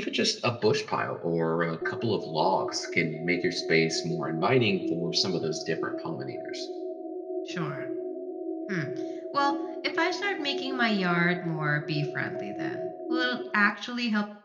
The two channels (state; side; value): identical; both; correlation 1.00